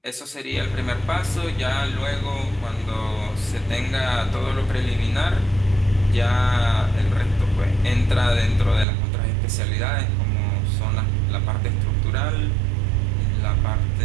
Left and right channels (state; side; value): drops out; left; at 8.8 s